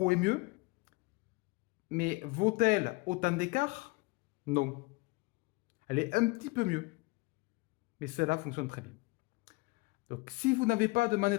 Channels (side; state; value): right; quieter; 25.0 dB